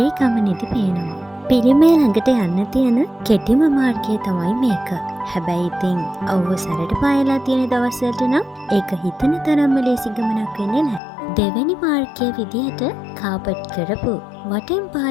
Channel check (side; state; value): right; drops out; at 11.0 s